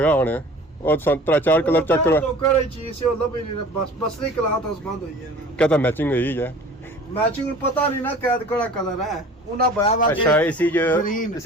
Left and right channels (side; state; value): both; normal; correlation 0.44